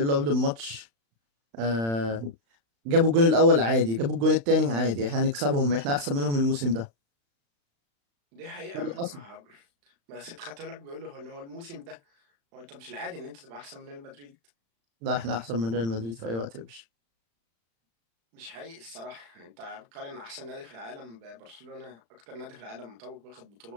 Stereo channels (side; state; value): left; late; 35 ms